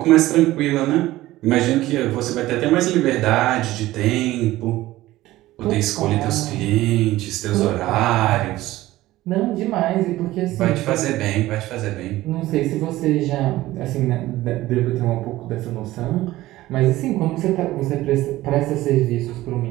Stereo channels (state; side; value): quieter; left; 16.6 dB